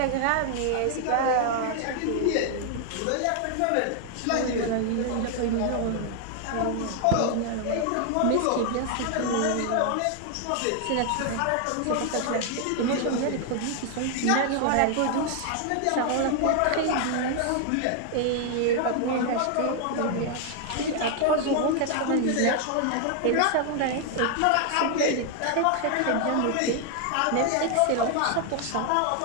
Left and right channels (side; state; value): both; different; correlation 0.00